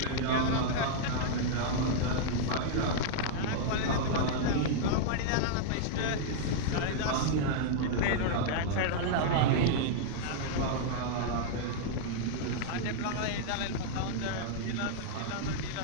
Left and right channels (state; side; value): different; both; correlation -0.01